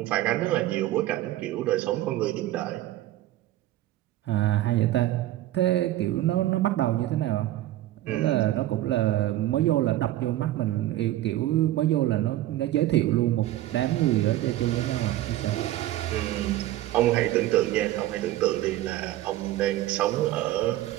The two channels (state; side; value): quieter; left; 14.7 dB